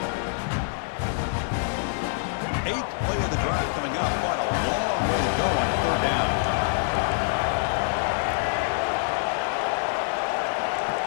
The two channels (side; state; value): right; silent; 56 dB below the other